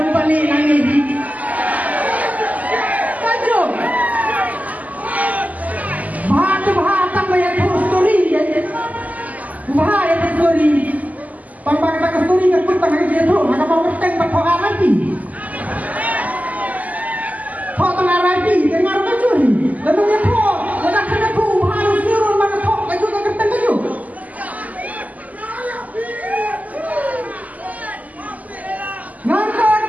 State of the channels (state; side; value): late; left; 0.076 ms